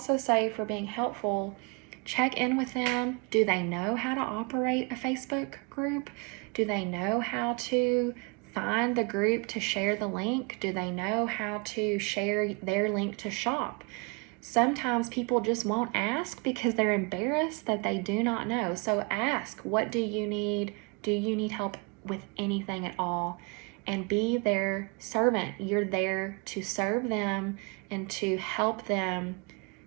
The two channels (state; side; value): quieter; left; 31.8 dB